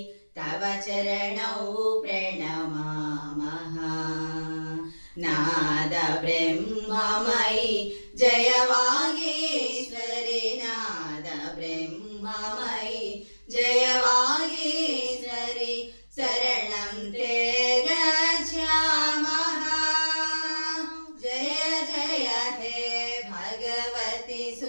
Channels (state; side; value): inverted; both; correlation -1.00